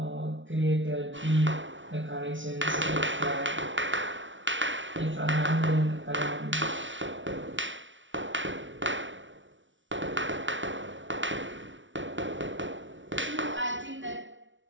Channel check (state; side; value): late; left; 0.56 ms